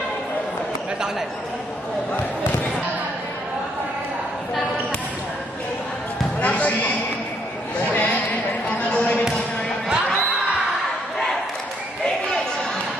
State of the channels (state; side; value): normal; both; correlation 0.71